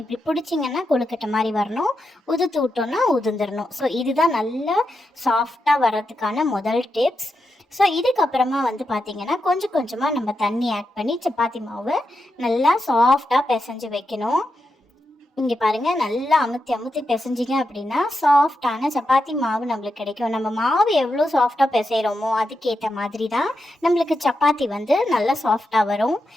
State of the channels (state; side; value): normal; both; correlation 0.86